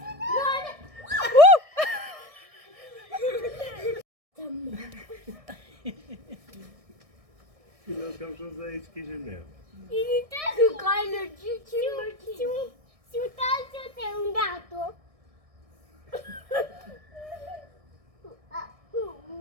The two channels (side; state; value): left; late; 1.6 ms